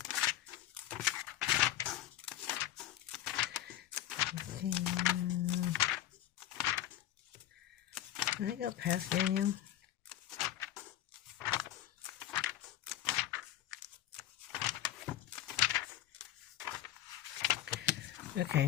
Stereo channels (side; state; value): right; quieter; 12.9 dB